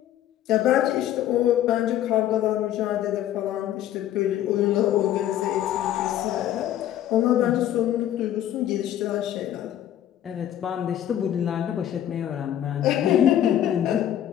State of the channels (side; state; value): right; quieter; 11.7 dB